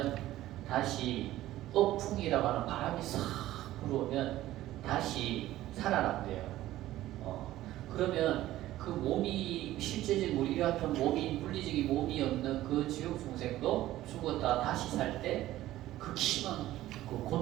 다시 업풍이라고 하는 바람이 싹 불어오면 다시 살아난대요. 그러면 그 몸이 실제적인 우리 같은 몸이 물리적인 몸이 없는 그 지옥 중생도 죽었다 다시 살 때 극심한 그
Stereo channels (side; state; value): left; quieter; 14.9 dB